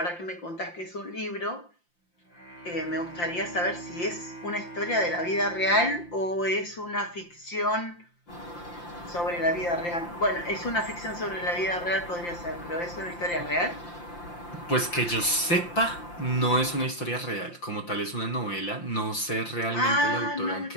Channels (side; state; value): right; late; 5.8 ms